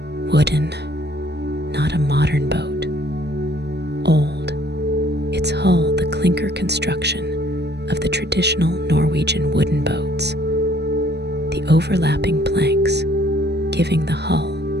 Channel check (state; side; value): late; left; 0.49 ms